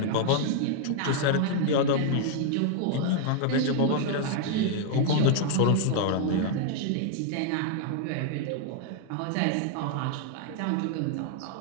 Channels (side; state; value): both; different; correlation 0.00